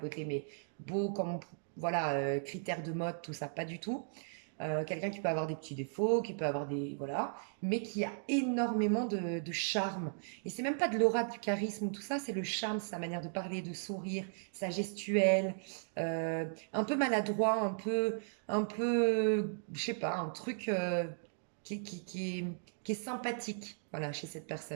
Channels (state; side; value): silent; left; digital silence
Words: mais beau comme, voilà, critère de mode, tout ça, pas du tout. Quelqu'un qui peut avoir des petits défauts, qui peut avoir des... Voilà, mais qui a énormément de charme. Et c'est même pas de l'aura, du charisme ou tout ça, c'est le charme, sa manière de parler, de sourire, sa gestuelle, un peu maladroit, je sais pas, un truc qui est sympathique, voilà, chez cette